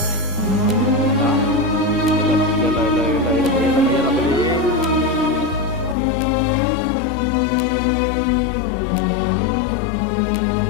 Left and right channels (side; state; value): right; drops out; at 6.0 s